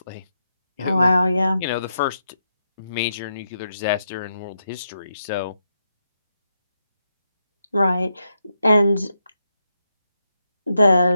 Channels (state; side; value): inverted; both; correlation -0.83